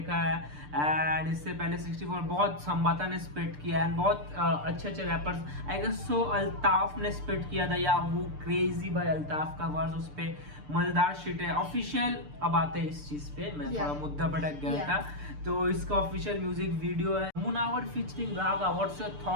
है। एंड इससे पहले 64 बहुत संबाता ने स्पिट किया, एंड बहुत अच्छे अच्छे rappers, I guess so Altaf ने स्पिट किया था, या वो क्रेजी भाई अल्ताफ का वर्स उस पर मजेदार शिट है। ऑफिशियल अब आते हैं इस चीज पे, मैं थोड़ा मुद्दा भटक गया था। तो इसका ऑफिशियल म्यूजिक वीडियो है Munawar featuring Raga. What's your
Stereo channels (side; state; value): left; late; 6.8 ms